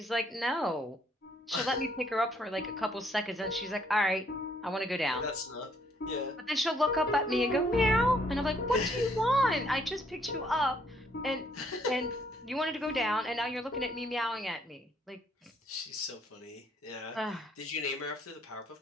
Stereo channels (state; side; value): normal; both; correlation 0.67